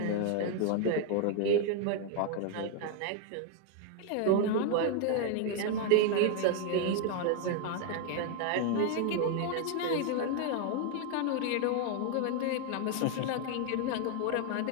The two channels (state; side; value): different; both; correlation 0.00